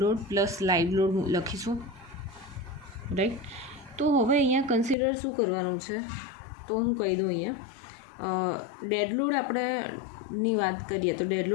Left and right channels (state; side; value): drops out; right; at 5.0 s